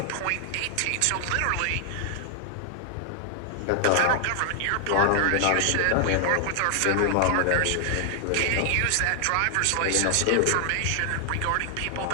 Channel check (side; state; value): both; different; correlation 0.00